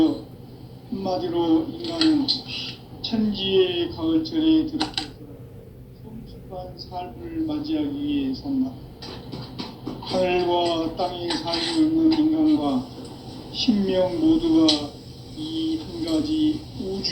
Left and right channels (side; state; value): both; identical; correlation 1.00